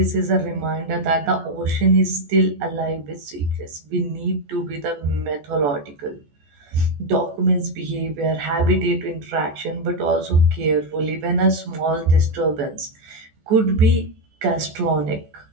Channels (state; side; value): late; left; 14 ms